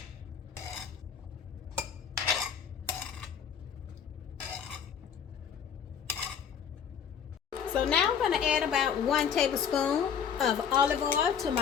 So now I'm going to add about 1 tablespoon of olive oil to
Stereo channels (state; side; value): quieter; right; 7.6 dB